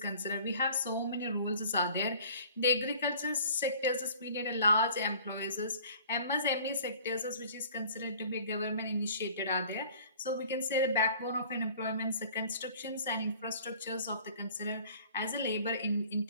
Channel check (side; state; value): both; inverted; correlation -0.49